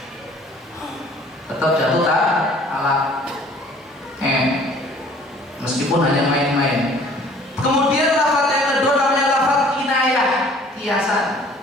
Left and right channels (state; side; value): normal; both; correlation 0.53